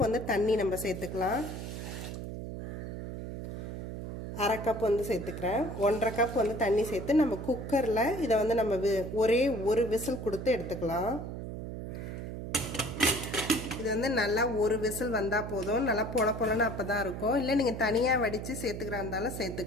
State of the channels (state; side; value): noise; right; hum, 7 dB below the sound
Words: வந்து தண்ணி நம்ம சேர்த்துக்கலாம். 1/2 கப் வந்து சேர்த்துக்கிறேன். 1/2 கப் வந்து தண்ணி சேர்த்து நம்ம குக்கரில் இதை வந்து நம்ம ஒரே ஒரு விசில் கொடுத்து எடுத்துக்கலாம். இது வந்து நல்லா ஒரு விசில் வந்தால் போதும். நல்லா பொலன்னு அப்போ தான் இருக்கும். இல்லை நீங்கள் தனியாக வடித்து சேர்த்துக்கிறா இருந்தாலும்